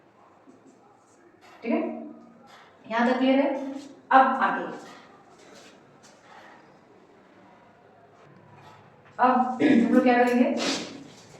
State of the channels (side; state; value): both; identical; correlation 1.00